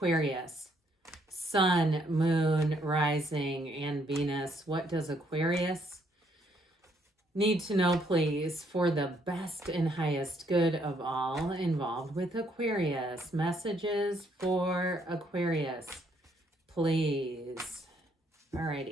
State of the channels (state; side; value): normal; both; correlation 0.70